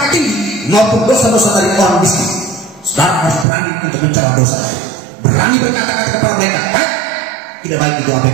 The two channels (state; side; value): drops out; left; at 3.5 s